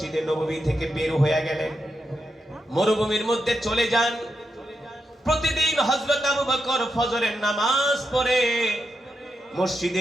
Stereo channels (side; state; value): both; normal; correlation 0.86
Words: নববী থেকে বের হয়ে গেলেন, মরুভূমির মধ্যে চলে যান। প্রতিদিন হযরত আবু বকর ফজরের নামাজ পড়ে